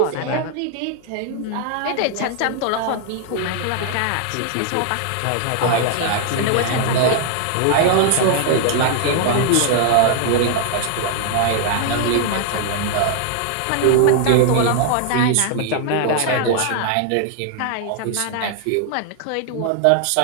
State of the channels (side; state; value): both; different; correlation 0.00